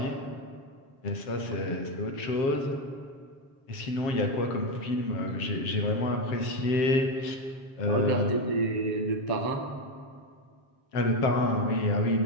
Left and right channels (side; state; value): right; late; 7.4 ms